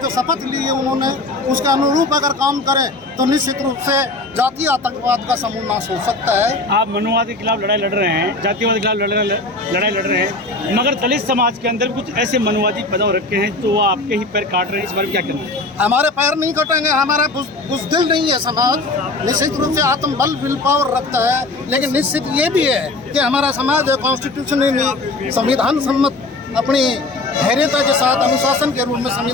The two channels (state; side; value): quieter; right; 3.1 dB